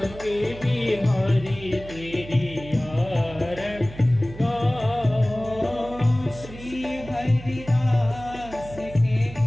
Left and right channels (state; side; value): noise; right; hum, 15 dB below the sound